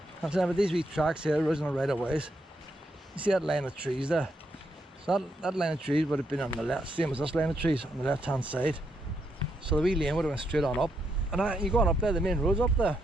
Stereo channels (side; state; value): both; normal; correlation 0.79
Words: I'm saying, but these wee tracks here, original right of ways. You see that line of trees there? So that line of trees would have been on the left, same as this line of trees on the left hand side. So the wee lane would have went straight on up. And you go on up there, the main road's up there.